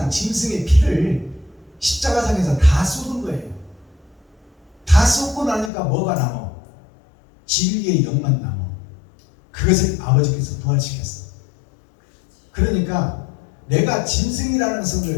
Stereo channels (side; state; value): right; drops out; at 5.7 s